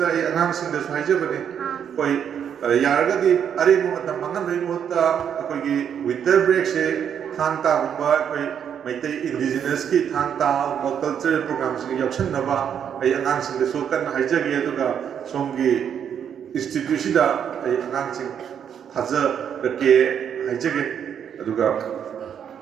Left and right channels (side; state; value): left; quieter; 8.4 dB